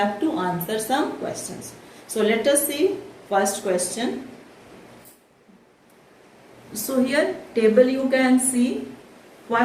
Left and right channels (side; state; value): both; identical; correlation 1.00